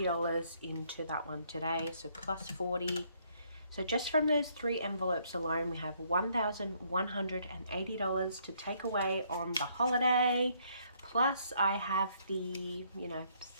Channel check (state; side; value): inverted; both; correlation -0.68